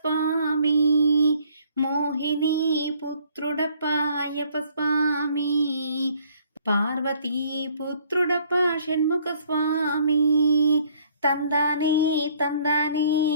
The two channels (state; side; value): inverted; both; correlation -0.61